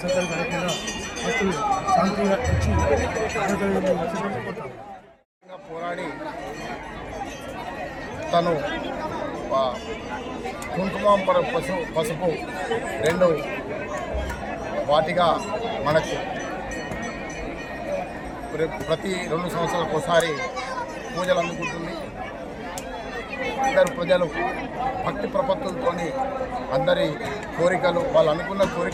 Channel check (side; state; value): both; identical; correlation 1.00